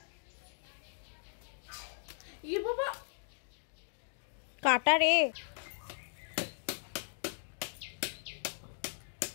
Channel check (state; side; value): silent; right; digital silence